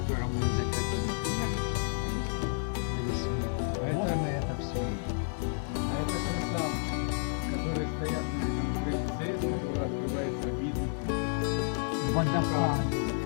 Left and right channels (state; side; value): silent; right; digital silence